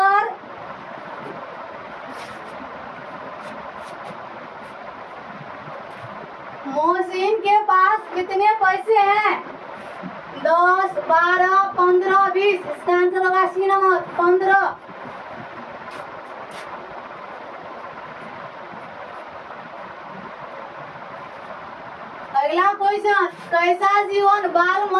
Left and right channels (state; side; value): identical; both; correlation 1.00